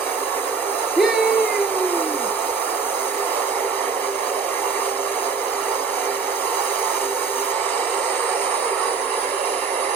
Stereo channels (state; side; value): quieter; left; 5.1 dB